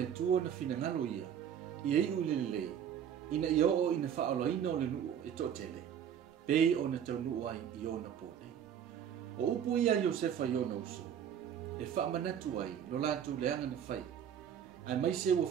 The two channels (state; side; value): quieter; left; 8.9 dB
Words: tua na finangalo ia. Ia i ulelelei. Ina ia o ina whaoloina o le nuu e totele. Pei o na tau nuu ai i o na pōnei. O upo ia Iosefa i o na uso. E whaamanatu ai lo lātou leanga na whai. Ai mai se ua